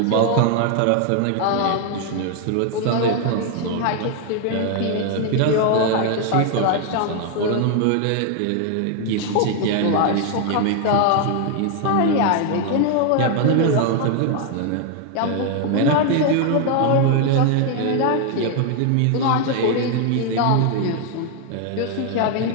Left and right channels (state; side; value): different; both; correlation 0.00